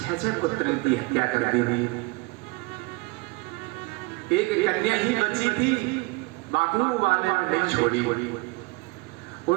पुत्र की हत्या कर दी। एक कन्या ही बची थी, बाकी वाले नहीं छोड़ी,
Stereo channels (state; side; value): quieter; left; 24.6 dB